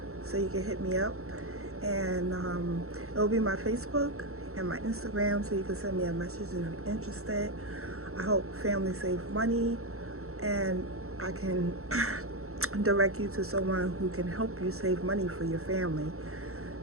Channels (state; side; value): late; left; 0.63 ms